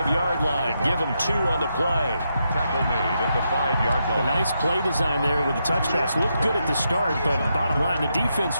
line. Give him 2 on the play. Tackle made at the 5-yard line. A nice play design there with the touch pass. Looked good at the start, but bottom line, the defense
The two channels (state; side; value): inverted; both; correlation -0.82